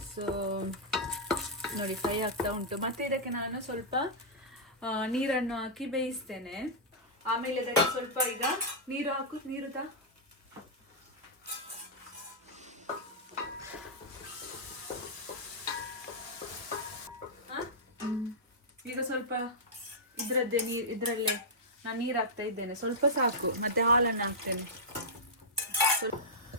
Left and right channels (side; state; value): both; normal; correlation -0.10